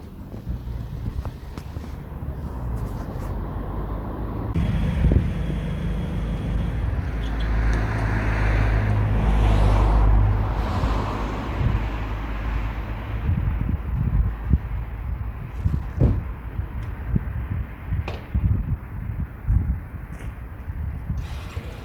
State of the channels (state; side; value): identical; both; correlation 1.00